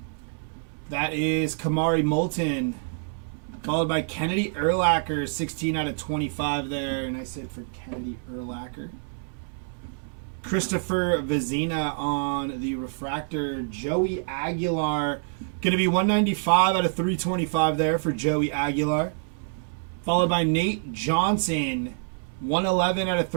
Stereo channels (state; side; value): silent; left; 61 dB below the other